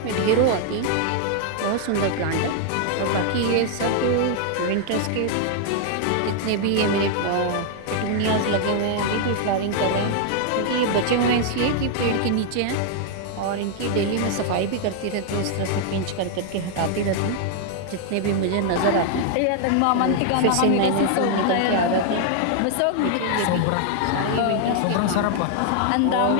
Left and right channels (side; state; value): both; different; correlation 0.00